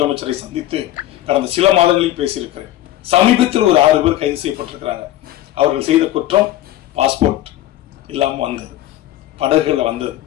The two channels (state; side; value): quieter; right; 14.2 dB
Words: சந்தித்து கடந்த சில மாதங்களில் பேசியிருக்கிறேன். சமீபத்தில் ஒரு 6 பேர் கைது செய்யப்பட்டிருக்கிறாங்க. அவர்கள் செய்த குற்றம் பாஸ்போர்ட் இல்லாம வந்தது, படகுல வந்தது.